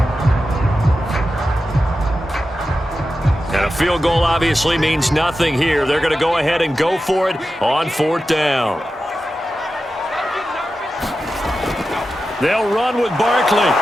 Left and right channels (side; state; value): both; normal; correlation 0.91